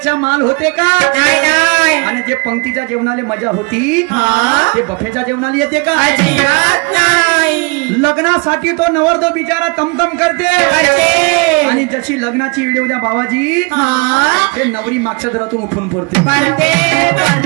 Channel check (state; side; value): quieter; left; 30.7 dB